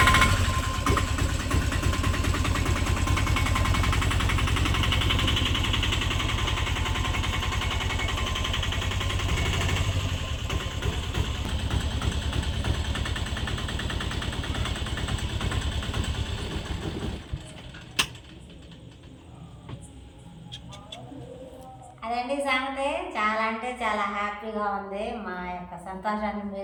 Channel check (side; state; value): both; identical; correlation 1.00